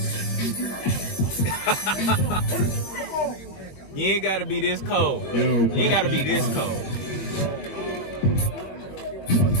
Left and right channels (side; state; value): right; late; 21 ms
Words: You ain't gotta be this cold. You ain't gotta be this cold.